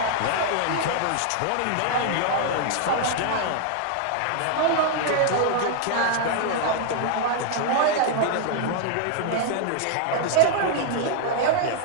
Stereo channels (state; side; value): different; both; correlation -0.01